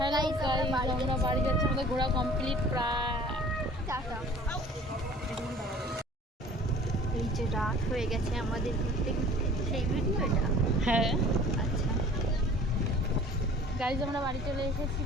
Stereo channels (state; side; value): normal; both; correlation 0.48